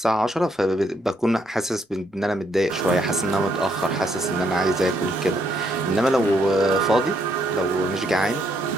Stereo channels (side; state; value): both; normal; correlation 0.73